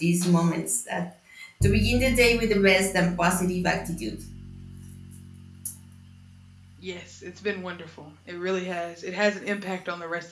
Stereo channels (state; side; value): identical; both; correlation 1.00